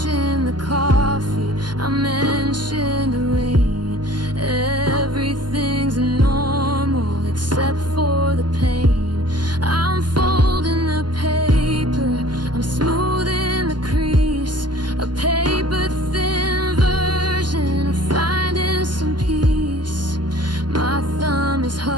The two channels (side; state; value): left; late; 0.71 ms